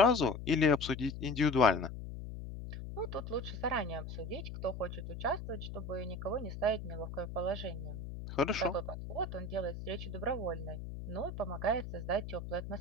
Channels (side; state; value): left; noise; hum, 8 dB below the sound